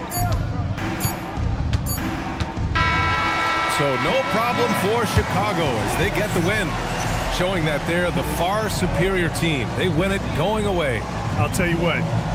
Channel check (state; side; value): identical; both; correlation 1.00